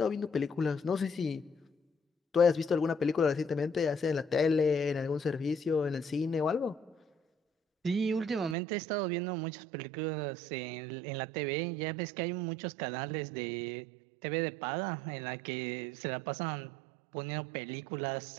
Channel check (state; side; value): drops out; left; at 8.6 s